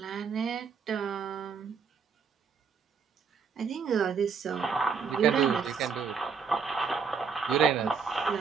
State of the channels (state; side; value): quieter; left; 5.9 dB